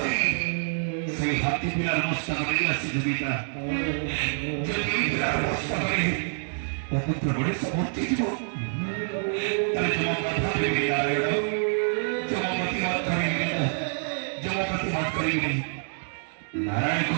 সেই হাতি পিলার মস্তা করে আসি পিতা যদি পিলার মস্তা করে অপুত্র বড়ে সমর্থি দিব তাহলে তোমার কথা ভেবে নারায়ণ জমপতি মত করিবে জমপতি মত করিবে नारायण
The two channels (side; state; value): left; silent; digital silence